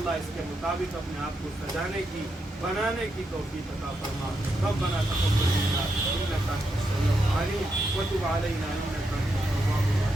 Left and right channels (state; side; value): normal; both; correlation 0.83